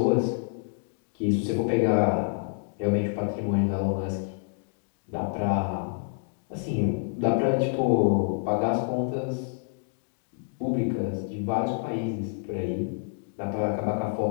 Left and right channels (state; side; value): silent; right; digital silence